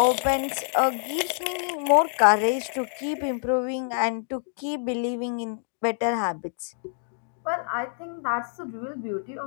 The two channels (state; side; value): silent; right; digital silence